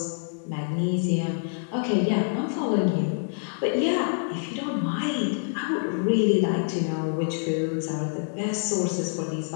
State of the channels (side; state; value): right; silent; digital silence